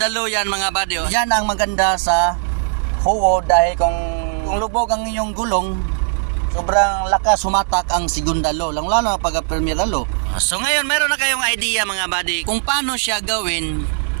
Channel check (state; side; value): silent; left; 67 dB below the other